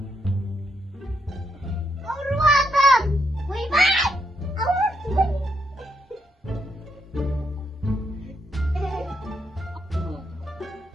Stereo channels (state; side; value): normal; both; correlation 0.78